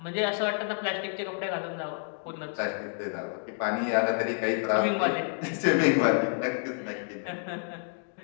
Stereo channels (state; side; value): silent; right; 58 dB below the other